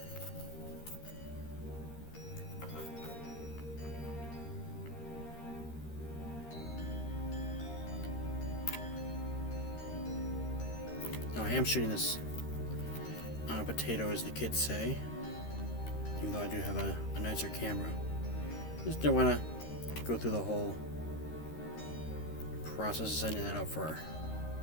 Now I am shooting this on a potato, as the kids say, even though I do have a nicer camera. Just don't want to go through the whole process of setting that up for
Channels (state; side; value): late; right; 13 ms